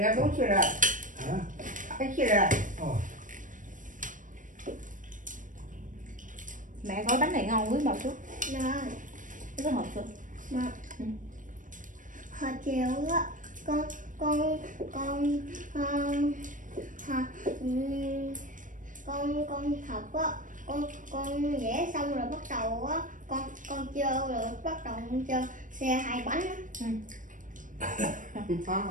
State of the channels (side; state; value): left; late; 0.38 ms